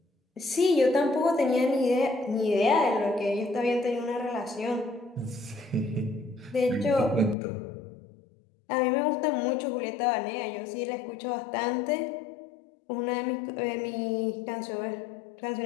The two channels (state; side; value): drops out; right; at 7.4 s